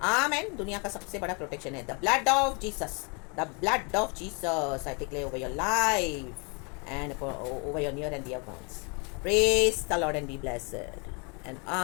आमेन। दुनिया का सबसे बड़ा प्रोटेक्शन है the blood of Jesus, the blood of Jesus. I declare over your life and over your near and dear ones. Praise the Lord and be blessed. And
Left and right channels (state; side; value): quieter; right; 33.4 dB